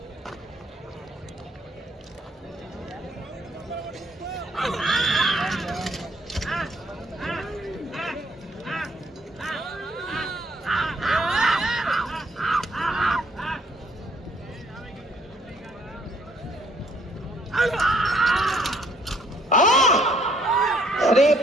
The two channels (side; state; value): both; normal; correlation 0.65